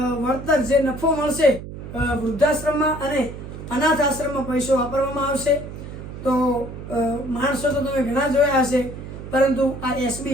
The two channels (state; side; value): noise; right; hum, 11 dB below the sound